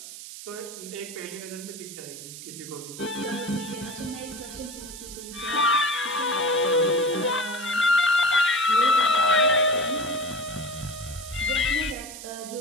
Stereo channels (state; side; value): noise; right; hiss, 12 dB below the sound